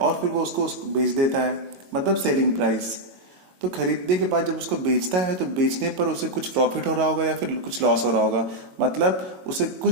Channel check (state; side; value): late; left; 22 ms